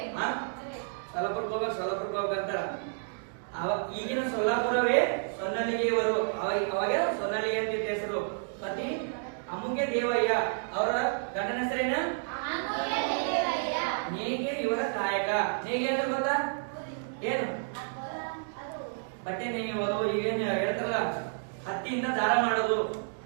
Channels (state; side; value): silent; left; digital silence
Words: ಸೊಲ್ಲಾಪುರಕ್ಕೆ ಹೋಗ್ಬೇಕಂತಾರ. ಈಗಿನ ಸೊಲ್ಲಾಪುರವೇ ಸೊನ್ನಲಿಗೆಯವರು. ಅವಾಗ ಸೊನ್ನಲಿಗೆ ಅಂತ ಹೆಸರು. ಪತಿ ಅಮುಗೆ ದೇವಯ್ಯ. ಅವರ ಗಂಡನ ಹೆಸರೇನ? ನೇಗೆ ಇವರ ಕಾಯಕ. ನೇಗೆ ಅಂದ್ರೆ ಗೊತ್ತಾ ಏನು? ಬಟ್ಟೆ ನೇಯುವುದು. ಈಗೇನು ಹೇಳ್ತಾರಲ್ಲ ಹತ್ತಿಯಿಂದ ದಾರ ಮಾಡೋದು.